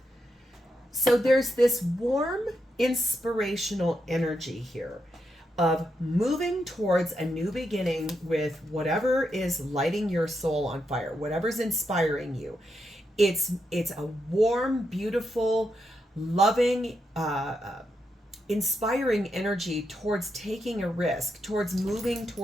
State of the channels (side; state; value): both; normal; correlation 0.83